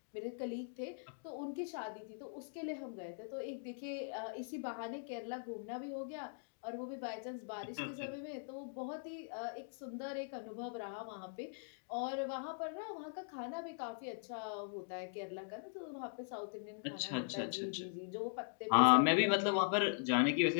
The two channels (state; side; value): silent; right; digital silence